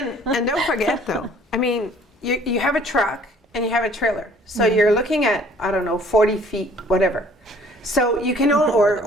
And don't forget though, I mean, you have a truck and you have a trailer. So you're looking at, I don't know, 40 feet, whatever. So you can own,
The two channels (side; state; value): both; normal; correlation 0.56